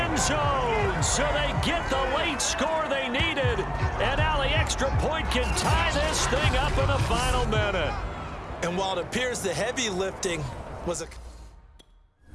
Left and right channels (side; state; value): both; identical; correlation 1.00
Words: zone, so they get the late score they needed, and now the extra point can tie this thing up in the final minute. And while it appears the heavy lifting was a...